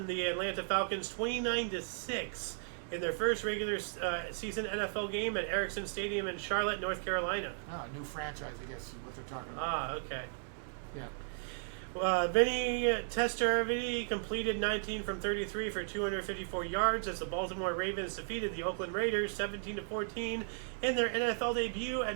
the Atlanta Falcons 29-6 in their first regular season NFL game at Ericsson Stadium in Charlotte, North Carolina. New franchise, I guess, is what they're talking about. Okay. Yeah. Vinny Testaverde completed 19 from 33 for 254 yards as the Baltimore Ravens defeated the Oakland Raiders 17-14 in their NFL debut at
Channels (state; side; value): silent; left; digital silence